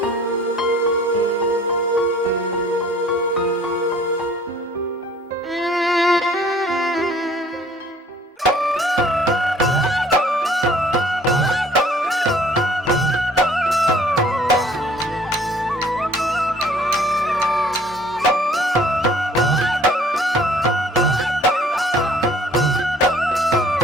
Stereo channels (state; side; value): normal; both; correlation 0.55